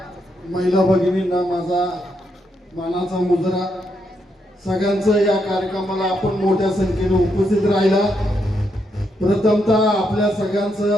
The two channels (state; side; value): normal; both; correlation 0.79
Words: महिला भगिनींना माझा मानाचा मुजरा। सगळ्यांचं या कार्यक्रमाला आपण मोठ्या संख्येने उपस्थित राहिला। प्रथमतः आपल्या